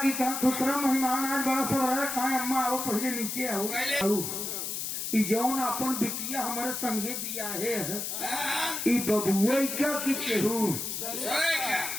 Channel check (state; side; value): noise; left; hiss, 4 dB below the sound